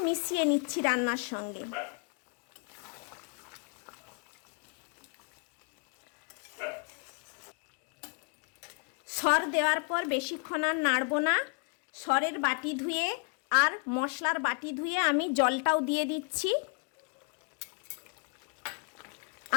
মিশিয়ে নিচ্ছি রান্নার সঙ্গে। সর দেওয়ার পর বেশিক্ষণ আর নাড়ব না। সরের বাটি ধুয়ে আর মশলার বাটি ধুয়ে আমি জলটাও দিয়ে দিচ্ছি,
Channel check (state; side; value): quieter; right; 37.3 dB